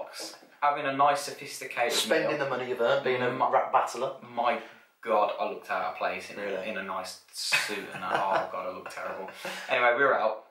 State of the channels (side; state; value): both; identical; correlation 1.00